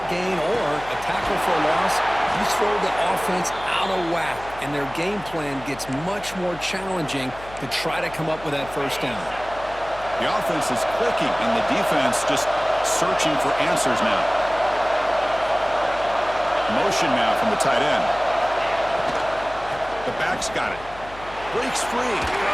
gain or a tackle for a loss, you throw the offense out of whack, and their game plan gets much more challenging to try to come up with that first down. The offense is clicking, and the defense just searching for answers now. Motion now from the tight end. The back's got it. Breaks free.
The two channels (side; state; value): left; noise; hum, 18 dB below the sound